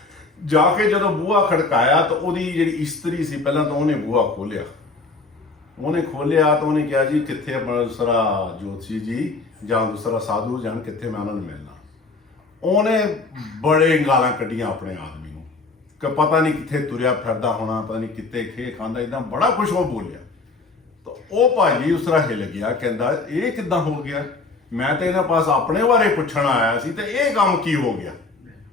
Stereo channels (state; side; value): quieter; right; 3.8 dB